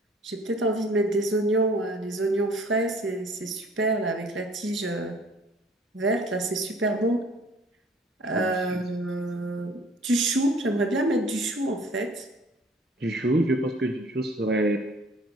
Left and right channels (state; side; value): normal; both; correlation 0.52